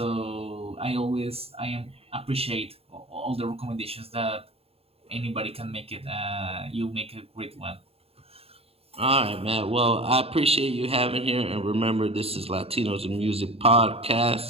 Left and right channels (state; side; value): late; left; 0.28 ms